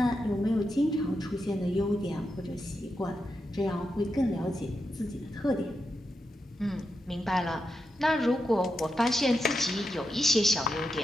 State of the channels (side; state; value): both; normal; correlation 0.87